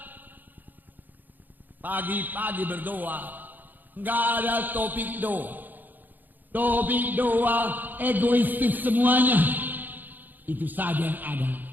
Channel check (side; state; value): left; late; 0.086 ms